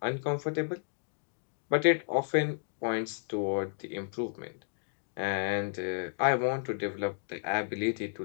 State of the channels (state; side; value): silent; right; digital silence